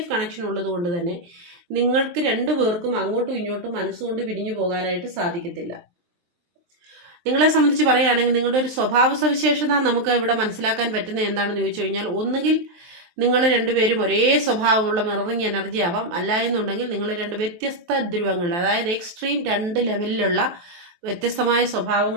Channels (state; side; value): late; left; 23 ms